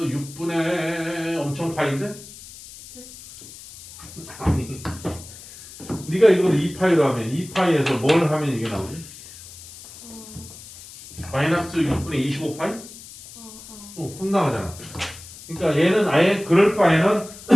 엄청 파인데? 네. 아니. 네가 이걸 2파이로 하면 2파이에서 뭘 하면 이게 나오지? 마이너스 6분의 25파이? 혼나가잖아. 그러니까 얘는 아예 그럴 바에는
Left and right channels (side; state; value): left; noise; hiss, 17 dB below the sound